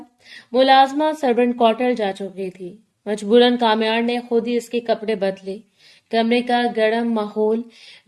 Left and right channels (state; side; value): identical; both; correlation 1.00